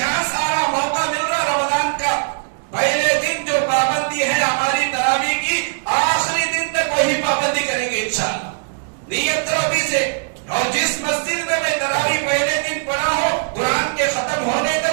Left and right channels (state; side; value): silent; left; digital silence